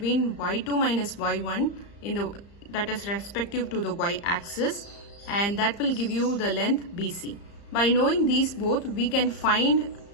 y2 minus y1 that is respective to the y-axis, and that will give you the length BC. By knowing these both, we can find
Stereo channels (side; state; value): right; late; 35 ms